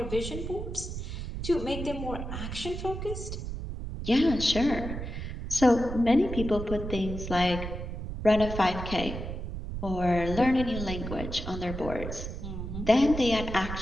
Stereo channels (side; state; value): right; noise; rumble, 6 dB below the sound